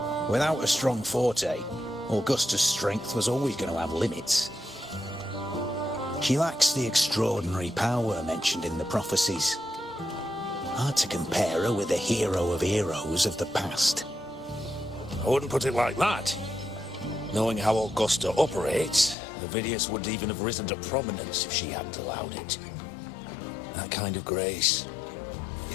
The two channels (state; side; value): drops out; right; at 19.2 s